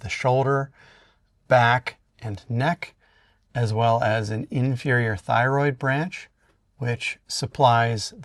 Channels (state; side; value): identical; both; correlation 1.00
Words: the shoulder, back, and neck, as well as an inferior thyroid branch, which supplies